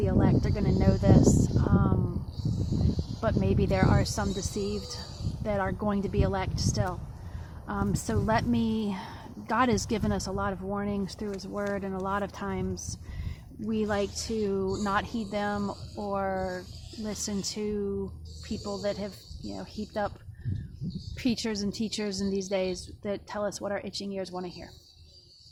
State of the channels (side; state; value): both; identical; correlation 1.00